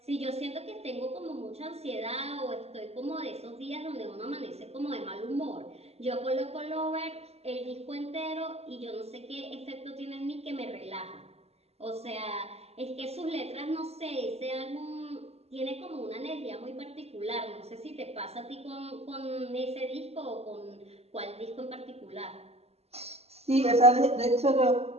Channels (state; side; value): late; left; 0.30 ms